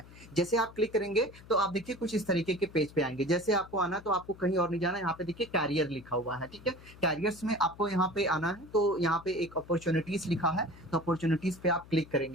जैसे आप क्लिक करेंगे तो आप देखिए कुछ इस तरीके के पेज पे आएंगे। जैसे आपको आना तो आपको कहीं और नहीं जाना, यहाँ पे देखिए कैरियर लिखा हुआ है, ठीक है। कैरियर्स में आपको यहाँ पे आना है, तो यहाँ पे एक अपॉर्चुनिटीज लिखा है, तो अपॉर्चुनिटीज पे आप क्लिक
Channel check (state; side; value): noise; left; hum, 20 dB below the sound